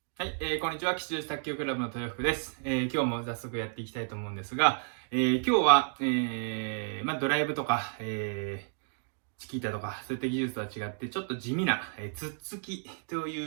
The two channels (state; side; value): silent; left; 57 dB below the other